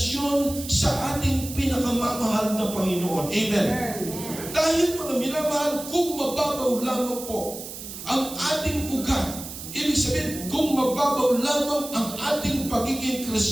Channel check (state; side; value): noise; right; hiss, 11 dB below the sound